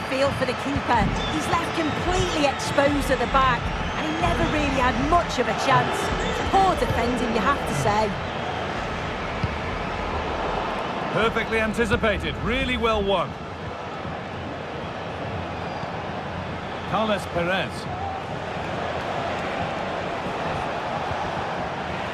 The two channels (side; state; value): both; identical; correlation 1.00